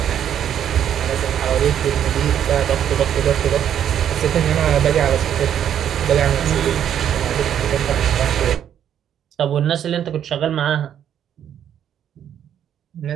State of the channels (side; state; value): left; quieter; 9.7 dB